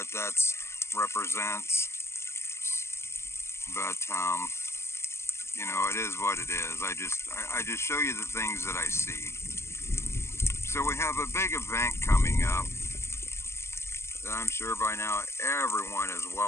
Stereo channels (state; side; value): late; right; 0.13 ms